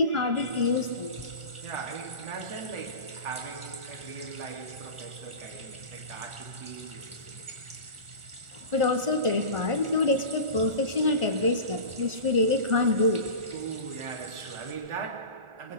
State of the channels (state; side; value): late; left; 1.4 ms